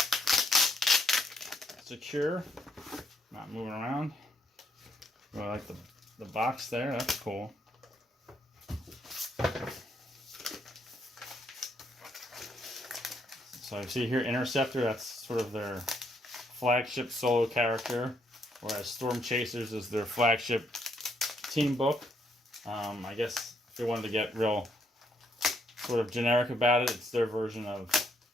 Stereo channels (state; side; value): normal; both; correlation 0.72